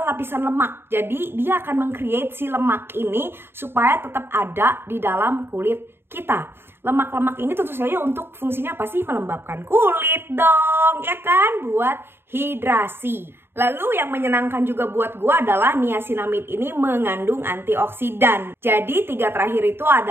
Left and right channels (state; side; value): late; left; 0.11 ms